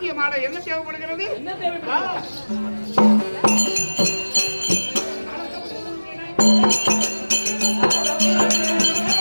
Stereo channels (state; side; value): inverted; both; correlation -1.00